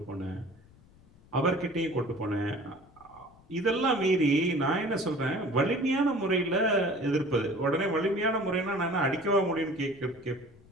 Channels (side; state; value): left; noise; rumble, 26 dB below the sound